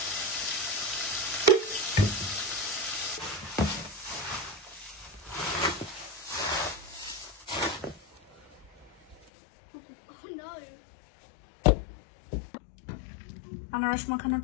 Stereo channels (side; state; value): right; drops out; at 9.2 s